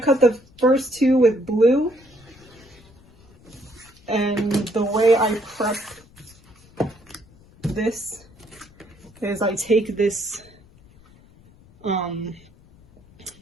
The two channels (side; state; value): left; noise; rumble, 26 dB below the sound